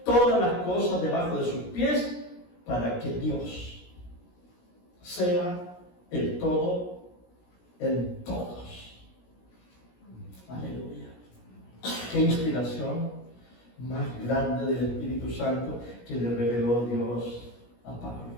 todas las cosas debajo de sus pies, para que Dios sea el todo en todos. Aleluya. Qué inspiración más grande del Espíritu Santo que le reveló Dios a Pablo.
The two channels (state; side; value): late; right; 17 ms